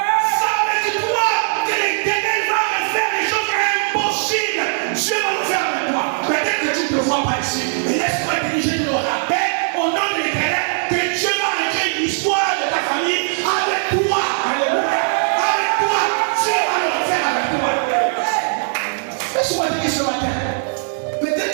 C'est avec toi que l'Éternel va refaire les choses impossibles. Dieu va le faire avec toi. Peut-être que tu ne te vois pas ici. Mais laisse-moi te dire, je te le rappelle, au nom de l'Éternel, que Dieu va écrire l'histoire de ta famille avec toi. Alléluia. Avec toi. Dieu va le refaire avec toi. Laisse-moi te dire ce matin. Peut-être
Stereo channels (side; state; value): left; silent; 56 dB below the other